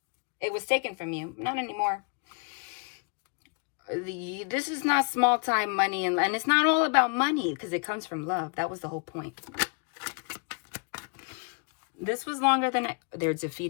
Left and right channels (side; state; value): right; quieter; 38.0 dB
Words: It was taken from you. Not anymore. This is not small time money. And it's not all about money because it comes from love. That was the whole point. This was longer than they're